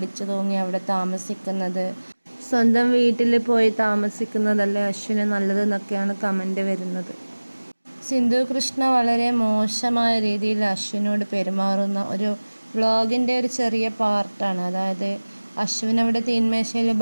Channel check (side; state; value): both; inverted; correlation -1.00